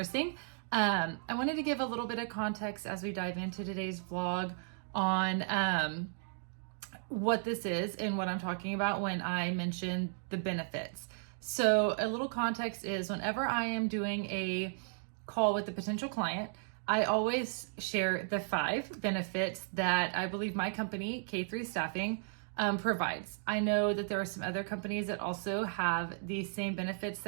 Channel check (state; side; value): silent; left; digital silence